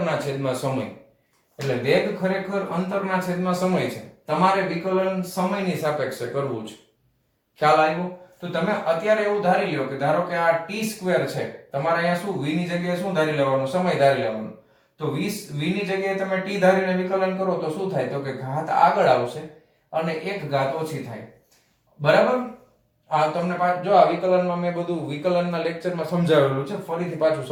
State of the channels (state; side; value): identical; both; correlation 1.00